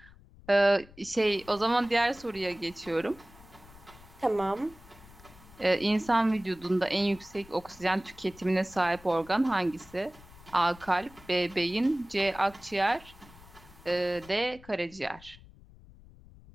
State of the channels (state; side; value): noise; left; rumble, 22 dB below the sound